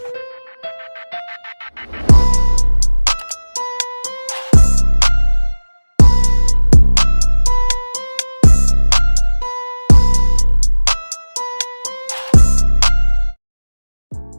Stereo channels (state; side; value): inverted; both; correlation -1.00